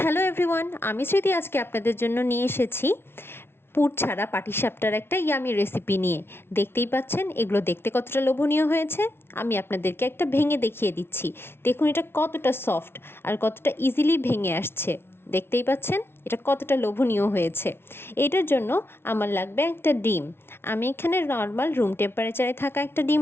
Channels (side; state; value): right; late; 0.12 ms